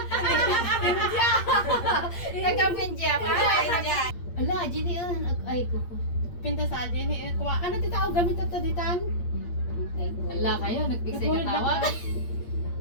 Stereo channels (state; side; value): late; right; 8.6 ms